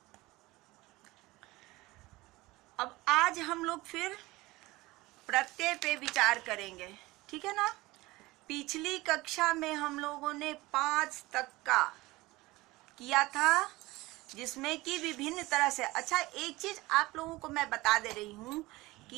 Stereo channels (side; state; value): left; quieter; 20.2 dB